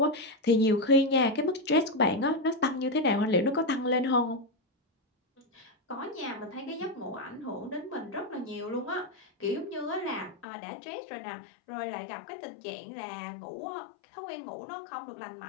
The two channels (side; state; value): right; drops out; at 10.5 s